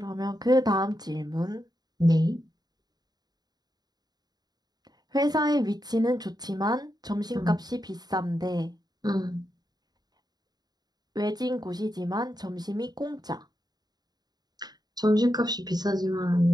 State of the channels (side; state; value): left; late; 0.19 ms